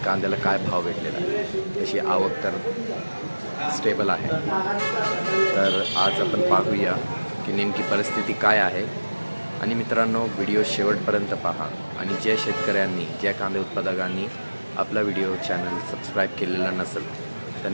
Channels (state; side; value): inverted; both; correlation -1.00